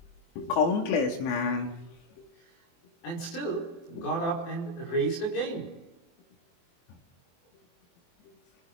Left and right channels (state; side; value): late; right; 23 ms